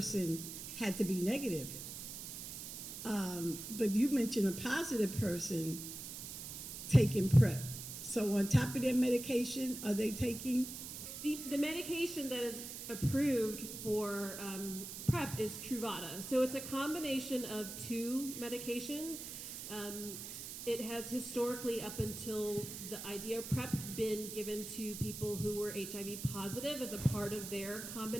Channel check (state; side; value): noise; right; hiss, 8 dB below the sound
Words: had to be negative. But you mentioned a positive person taking PrEP. So on top of their medication, are they taking? The medication that is approved for PrEP is Truvada. So it's a combination of two medications. It has historically, up until the idea of PrEP, been given to people who were HIV positive as a part of their